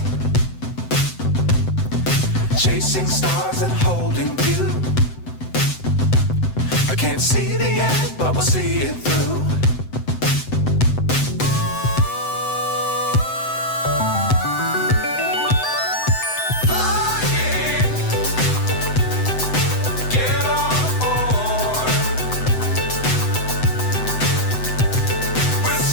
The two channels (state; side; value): late; right; 7.9 ms